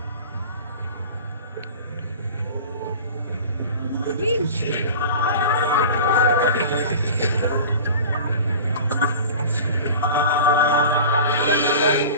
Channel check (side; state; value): both; inverted; correlation -0.38